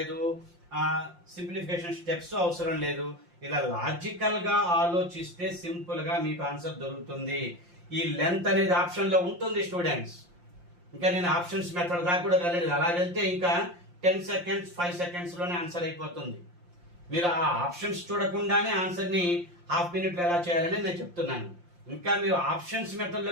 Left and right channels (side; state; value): left; late; 5.7 ms